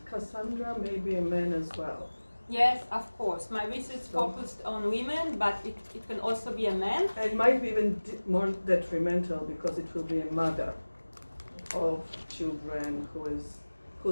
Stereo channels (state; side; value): inverted; both; correlation -1.00